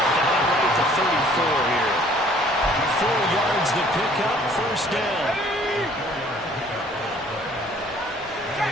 right at the 34 here. 4 yards the pickup, 1st down.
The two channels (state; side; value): normal; both; correlation 0.57